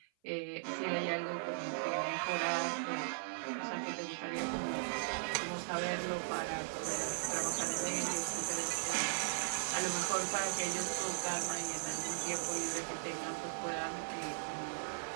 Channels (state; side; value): silent; left; 52 dB below the other